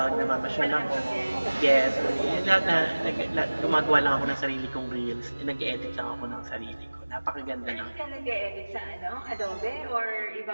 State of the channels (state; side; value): inverted; both; correlation -1.00